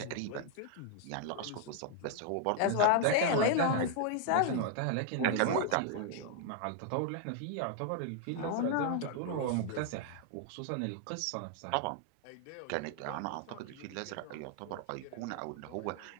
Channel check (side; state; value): both; different; correlation 0.00